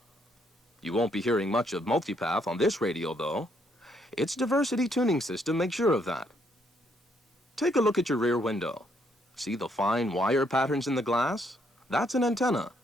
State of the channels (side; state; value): both; normal; correlation 0.72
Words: You won't be hearing much of multipath on this radio, though. Its diversity tuning system makes sure of that. Take a look at your rear window. See the fine wire patterns in the glass? That's an antenna.